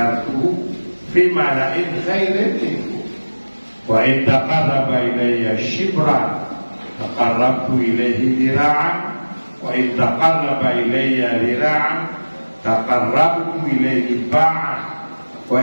fi mala'in khairin minhu wa in taqarraba ilayya shibran taqarrabtu ilayhi dira'an wa in taqarraba ilayya dira'an taqarrabtu ilayhi ba'an wa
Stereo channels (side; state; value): both; inverted; correlation -1.00